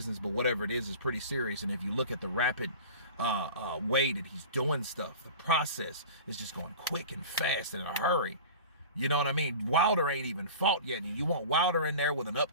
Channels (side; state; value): both; inverted; correlation -0.37